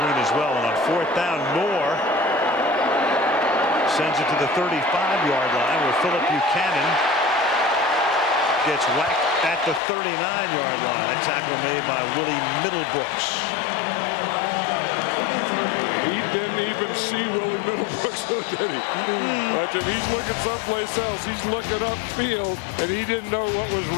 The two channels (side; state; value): right; drops out; at 9.8 s